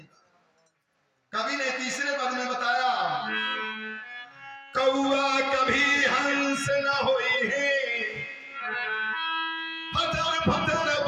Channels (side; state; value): both; identical; correlation 1.00